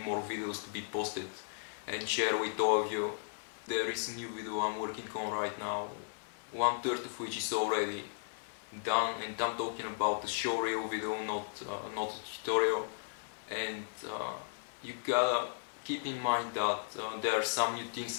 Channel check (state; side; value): silent; right; digital silence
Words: videos to be posted and share with all of you. There is a new video I'm working on right now, 1/3 of which is already done, and I'm talking about the showreel video, not a tutorial. And you gotta keep in mind that there are some new things